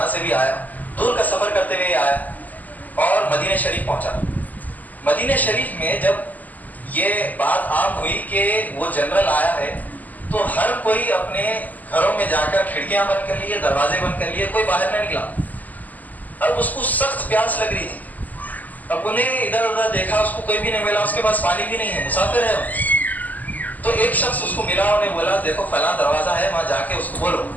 سے بھی آیا، دور کا سفر کرتے ہوئے آیا اور مدینہ شریف پہنچا۔ مدینہ شریف میں جب یہ بات عام ہوئی کہ وہ جنرل آیا ہے تو ہر کوئی اپنے گھروں میں جا کر کھڑکیاں بند کر لیے، دروازے بند کر لیے، کوئی باہر نہ نکلا۔ اب اس کو سخت پیاس لگ رہی تھی۔ اب انہیں ادھر ادھر دیکھا، اس کو کوئی بھی نہیں ملا، اس کے پاس پانی بھی نہیں ہے، مسافر ہے۔ تو ایک شخص اس کو ملا، انہیں بولا دیکھو فلاں دروازہ ہے، وہاں جا کے اس کو بولو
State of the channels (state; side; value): late; right; 0.081 ms